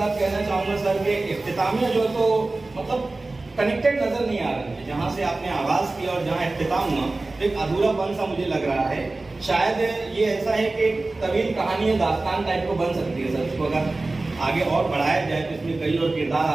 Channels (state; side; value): quieter; left; 3.2 dB